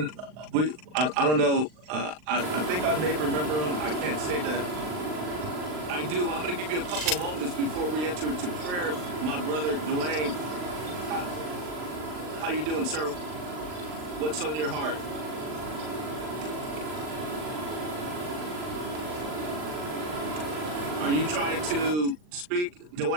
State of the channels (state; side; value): late; left; 39 ms